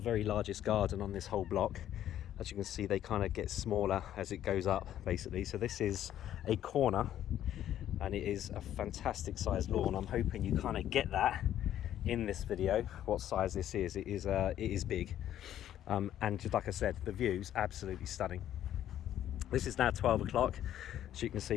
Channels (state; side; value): quieter; right; 11.5 dB